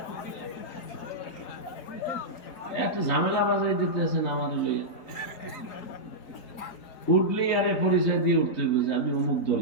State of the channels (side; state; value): right; late; 4.3 ms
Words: এত ঝামেলা বাজাই দিতেছেন আমাদের লইয়া। উঠলেই আরে পরিচয় দিয়ে উঠতে হবে যে আমি অমুক